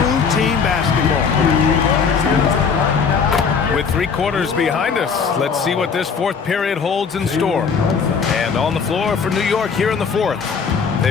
team basketball. With 3 quarters behind us, let's see what this 4th period holds in store. And on the floor for New York here in the 4th,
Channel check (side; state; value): right; quieter; 5.9 dB